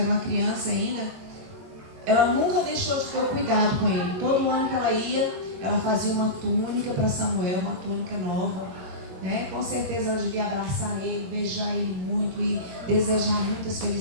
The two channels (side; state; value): left; late; 22 ms